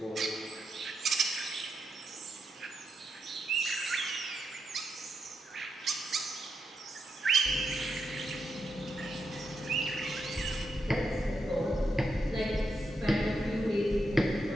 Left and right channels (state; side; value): normal; both; correlation 0.83